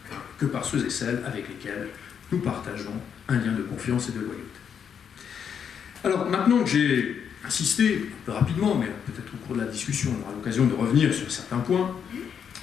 que par ceux et celles avec lesquels nous partageons un lien de confiance et de loyauté. Alors, maintenant que j'ai insisté, un peu rapidement, mais peut-être au cours de la discussion, on aura l'occasion de revenir sur certains points,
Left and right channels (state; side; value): quieter; right; 7.6 dB